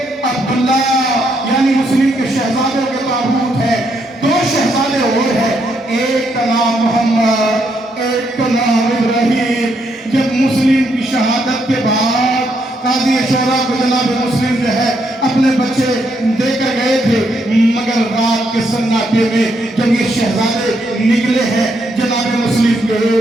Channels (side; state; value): both; normal; correlation 0.76